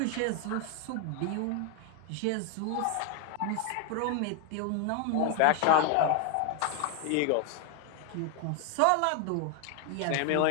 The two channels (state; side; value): different; both; correlation 0.01